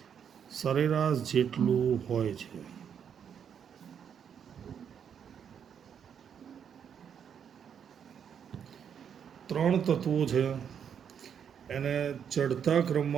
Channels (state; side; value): quieter; left; 7.9 dB